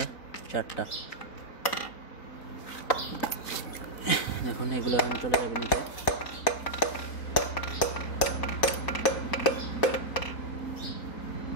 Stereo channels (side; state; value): right; late; 4.2 ms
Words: 4টা। দেখুন এগুলো এখন চলে যাবে নিচে।